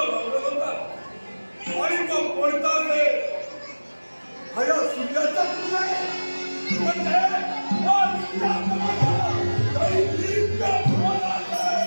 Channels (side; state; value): both; inverted; correlation -1.00